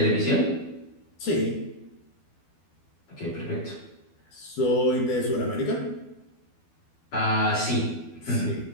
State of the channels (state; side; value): late; right; 12 ms